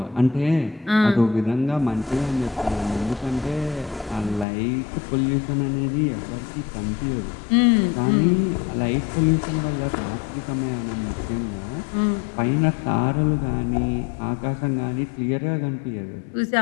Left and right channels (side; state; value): right; drops out; at 4.5 s